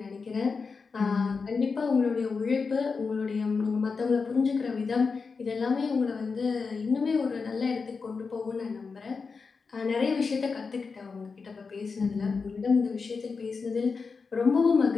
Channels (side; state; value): right; quieter; 4.9 dB